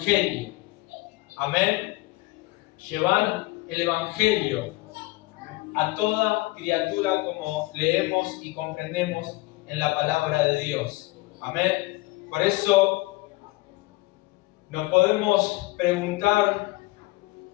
Amén. Llevar el Evangelio a toda criatura, como leemos y comprendemos en la palabra de Dios. Amén. Por eso nos podemos preguntar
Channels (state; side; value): quieter; right; 21.7 dB